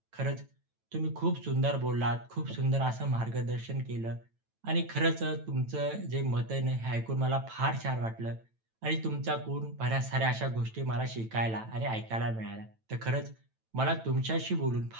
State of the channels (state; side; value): late; left; 9.0 ms